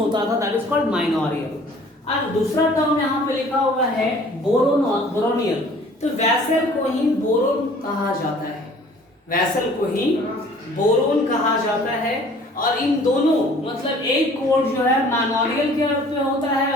था दैट इज कॉल्ड माइनोरियल। और दूसरा टर्म यहाँ पे लिखा हुआ है बोरोनियल, तो वैसल को ही बोरोन कहा जाता है, वैसल को ही बोरोन कहा जाता है। और इन दोनों मतलब एक कोड जो है मैनोरियल के अर्थ में होता है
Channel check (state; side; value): normal; both; correlation 0.52